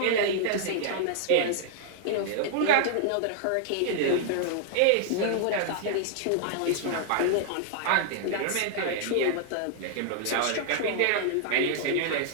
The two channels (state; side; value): different; both; correlation 0.00